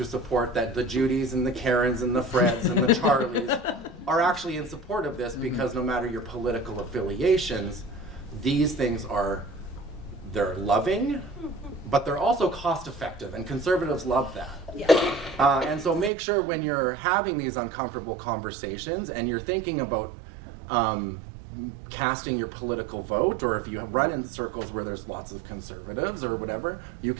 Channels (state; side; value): drops out; left; at 16.1 s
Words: support that the Judys and the Karens and the Freds and the Charlies are actually in support of this because no matter your political affiliations, these things they're loving, but they're also cost effective, and conservatives love that. Yeah. And so make sure when you're having these uncomfortable conversations and you're thinking about casting your political vote, or if you run in circles where there's lots of conservatives or whatever, you